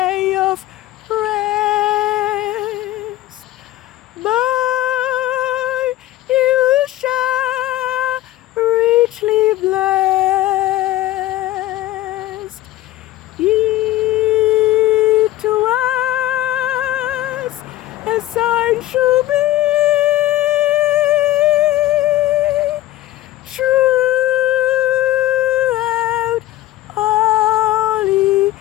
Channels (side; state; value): right; quieter; 15.4 dB